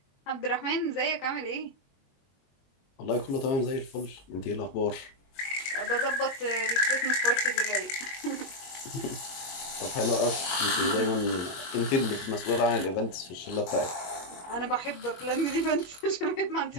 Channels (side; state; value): right; late; 22 ms